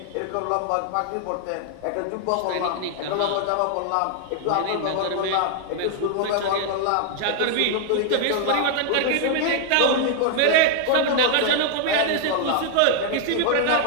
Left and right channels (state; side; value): different; both; correlation 0.00